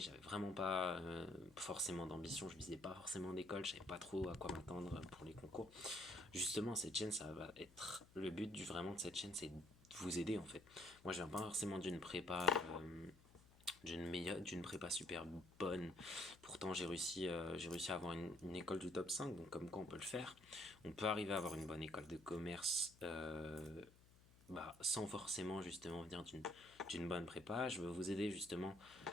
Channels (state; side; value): noise; left; hum, 24 dB below the sound